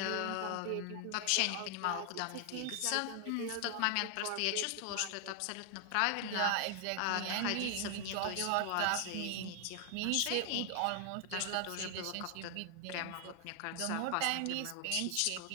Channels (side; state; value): both; different; correlation 0.00